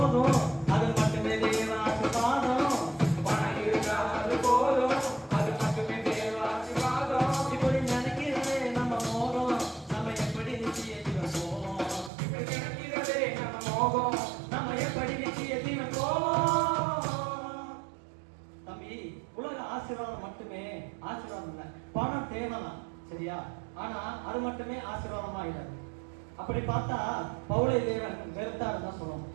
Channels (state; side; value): drops out; left; at 12.1 s